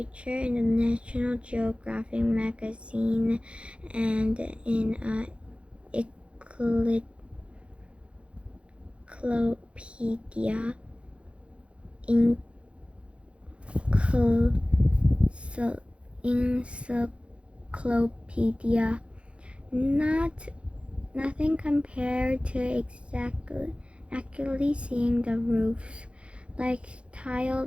in the National Geographic magazine and in a encyclopedia, not nothing compared to accurately seeing the roofs, like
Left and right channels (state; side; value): late; left; 0.060 ms